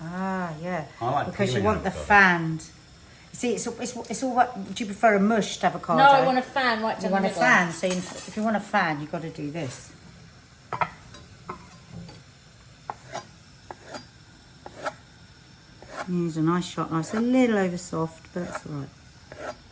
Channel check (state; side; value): identical; both; correlation 1.00